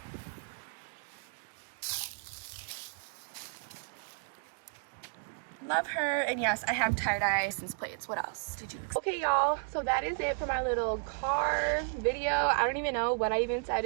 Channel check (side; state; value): left; quieter; 39.7 dB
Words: Love her. And yes, I have tie-dye license plates. What else did you expect? Okay, y'all, so that is it for my little car video. I don't even know what I even said,